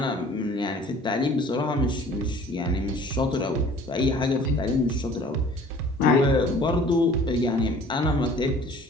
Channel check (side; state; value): both; normal; correlation 0.50